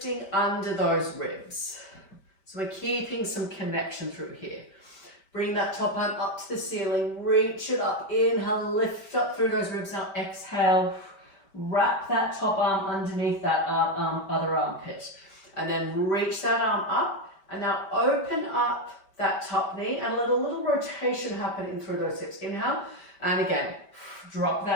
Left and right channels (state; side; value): late; right; 5.1 ms